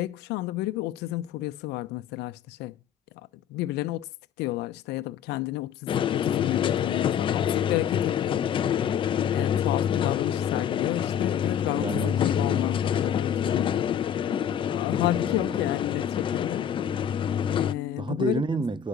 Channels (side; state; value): right; quieter; 8.7 dB